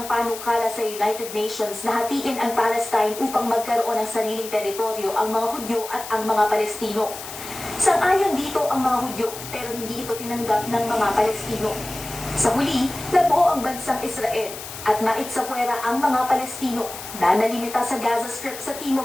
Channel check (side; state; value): left; noise; hiss, 11 dB below the sound